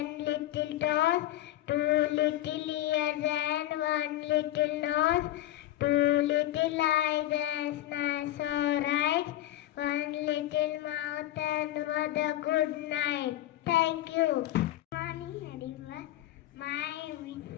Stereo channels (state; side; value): quieter; right; 14.4 dB